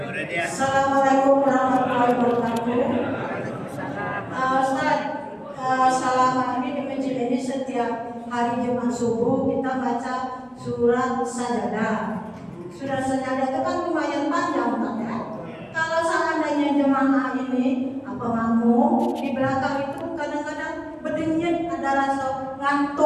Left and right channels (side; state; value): both; identical; correlation 1.00